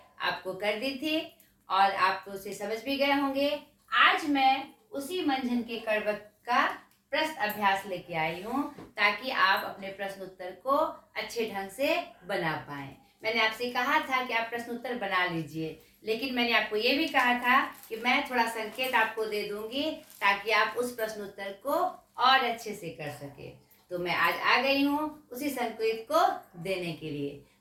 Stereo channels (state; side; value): identical; both; correlation 1.00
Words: आपको कर दी थी और आप तो उसे समझ भी गए होंगे। आज मैं उसी मंझन के कड़वक का प्रश्न अभ्यास लेके आई हूँ, ताकि आप अपने प्रश्न उत्तर को अच्छे ढंग से बना पाएं। मैंने आपसे कहा था कि आप प्रश्न उत्तर बना लीजिए, लेकिन मैंने आपको ये भी कहा था कि मैं थोड़ा संकेत आपको दे दूंगी ताकि आप उस प्रश्न उत्तर को और अच्छे से कर सके। तो मैं आज आ गई हूँ उसी संकेत को देने के लिए।